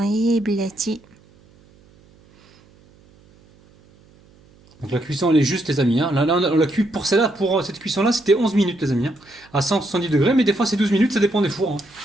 يا بلاتي. Donc la cuisson elle est juste les amis. Hein. Là on l'a cuit pour celle-là, pour cette cuisson là c'était 11 minutes les amis. Hein. À 170 degrés, mais des fois c'est 12 minutes, ça dépend des fours. Hein.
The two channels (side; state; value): right; noise; hum, 29 dB below the sound